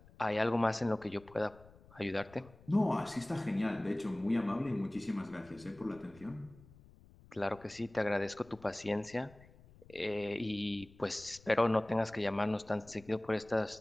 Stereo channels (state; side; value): noise; left; rumble, 23 dB below the sound